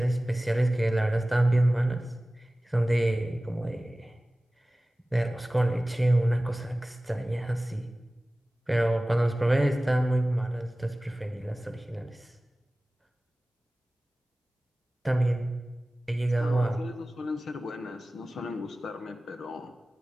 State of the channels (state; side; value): normal; both; correlation 0.97